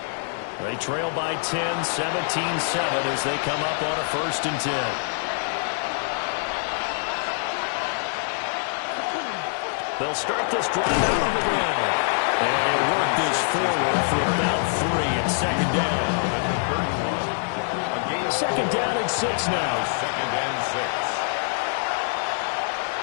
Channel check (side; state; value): right; silent; 61 dB below the other